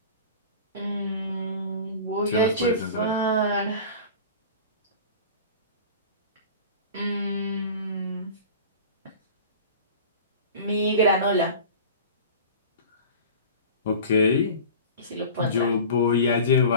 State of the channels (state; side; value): inverted; both; correlation -0.37